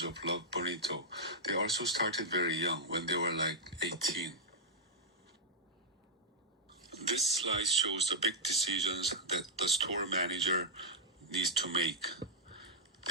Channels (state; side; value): normal; both; correlation -0.05